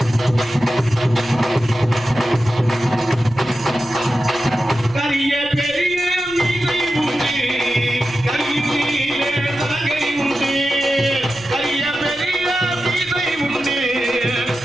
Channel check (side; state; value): left; noise; rumble, 23 dB below the sound